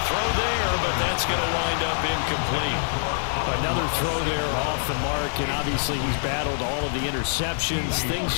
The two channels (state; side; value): silent; right; digital silence